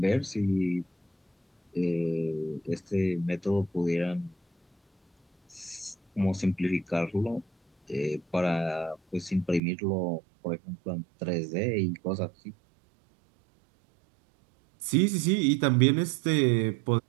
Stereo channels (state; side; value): drops out; left; at 9.6 s